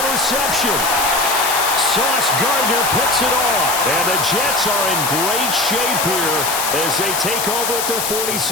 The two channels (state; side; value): noise; left; hiss, 2 dB below the sound